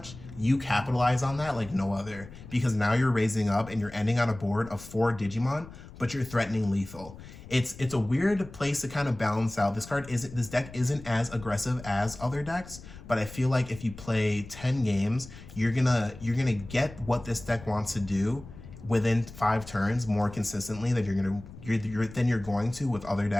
you capitalize on that like no other, because now you're raising up and you're ending on a board of 4 Digimon, but you're threatening lethal. It's a weird place to kind of balance out. This deck isn't as aggressive as other decks, but I feel like if you play 10 games, you're gonna get what this deck wants to do within 5 turns more consistently than you're going to with other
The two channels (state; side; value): noise; left; rumble, 16 dB below the sound